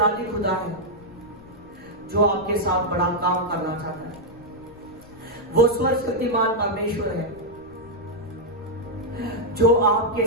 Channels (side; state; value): left; noise; rumble, 22 dB below the sound